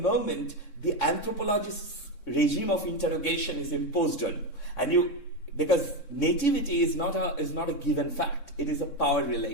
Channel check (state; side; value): late; right; 3.6 ms